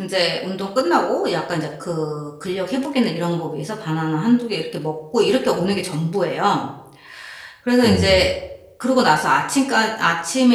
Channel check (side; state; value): both; identical; correlation 1.00